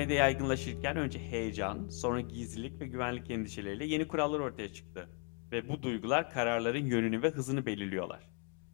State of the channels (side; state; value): right; quieter; 32.0 dB